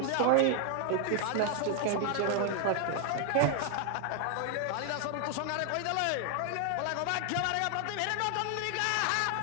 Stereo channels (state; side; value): different; both; correlation 0.00